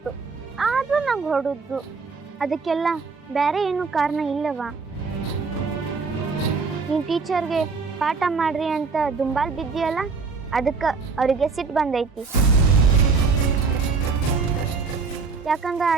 ಆದ್ರೂ ನಂಗೆ ಹೊಡೆದ್ರು. ಅದಕ್ಕೆಲ್ಲ ಬೇರೆ ಏನು ಕಾರಣ ಇಲ್ಲವಾ? ನೀನ್ ಟೀಚರ್ಗೆ ಪಾಠ ಮಾಡ್ರಿ ಅಂತ ದುಂಬಾಲ್ ಬಿದ್ದಿಯಲ್ಲ, ಅದಕ್ಕೆ ಅವರಿಗೆ ಸಿಟ್ಟು ಬಂದೈತಿ. ಯಾಕಂದ್ರೆ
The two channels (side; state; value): left; quieter; 4.7 dB